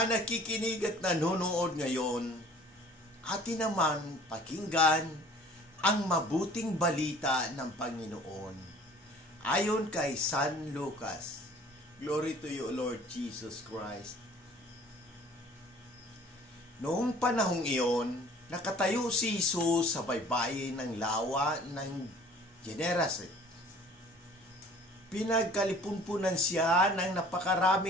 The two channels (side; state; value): both; normal; correlation 0.51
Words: nakikinig at nanonood ngayon, atin naman pakinggan ang mabuting balita ng Panginoon. Ayon kay San Lucas. Glory to you, Lord Jesus Christ. Noong panahong iyon, nakatayo si Jesus sa baybayin ng lawa ng Gennesaret. Pinagkalipunpunan siya ng